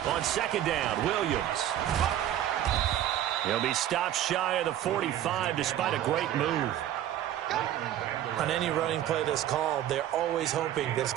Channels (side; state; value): left; quieter; 11.9 dB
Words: On 2nd down, Williams. He'll be stopped shy of the 45 despite a great move. On any running play that's called, they're always hoping that it's